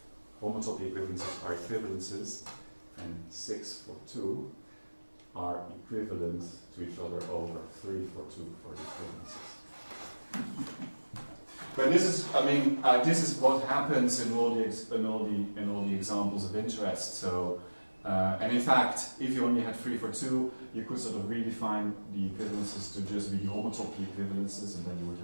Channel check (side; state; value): both; inverted; correlation -1.00